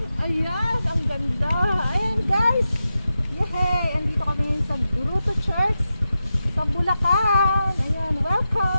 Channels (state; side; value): inverted; both; correlation -0.90